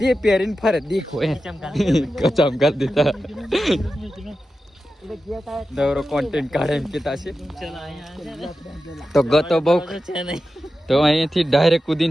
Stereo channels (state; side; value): normal; both; correlation 0.92